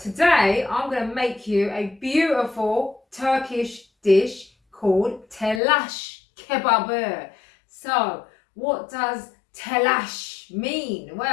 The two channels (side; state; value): right; drops out; at 5.6 s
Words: today I'm gonna make you a beautiful Turkish dish called Telas Kebabi. So what does telash mean?